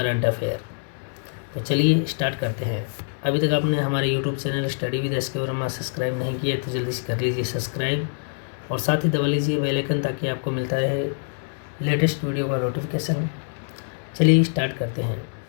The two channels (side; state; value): right; silent; digital silence